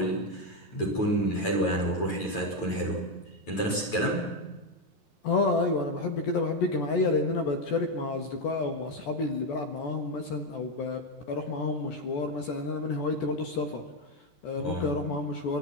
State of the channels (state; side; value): late; right; 9.1 ms